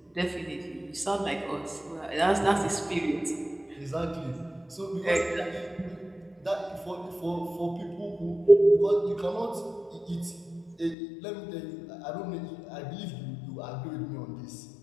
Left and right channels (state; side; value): drops out; right; at 11.0 s